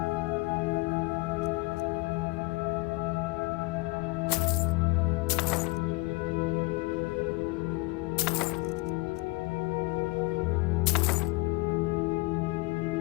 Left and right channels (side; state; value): right; quieter; 25.4 dB